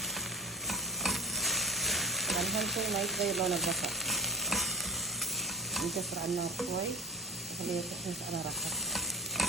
طبعا أهم شيء ما يتغير لون البصل، نكسر على النار شوي وخليه يتحمس على راحته.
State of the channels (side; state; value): both; normal; correlation 0.35